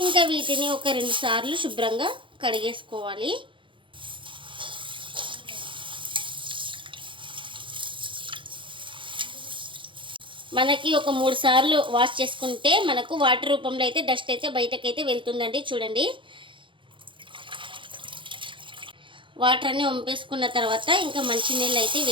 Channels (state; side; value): late; left; 0.24 ms